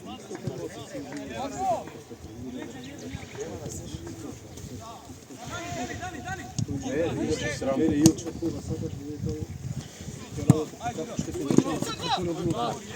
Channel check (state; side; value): identical; both; correlation 1.00